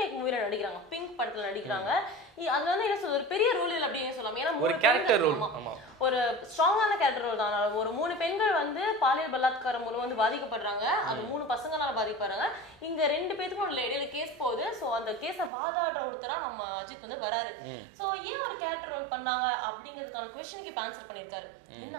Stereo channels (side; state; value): left; drops out; at 15.5 s